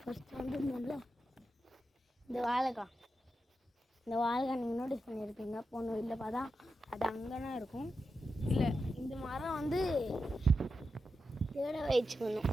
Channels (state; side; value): normal; both; correlation 0.88